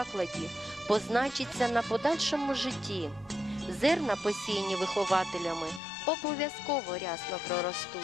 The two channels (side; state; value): right; drops out; at 5.8 s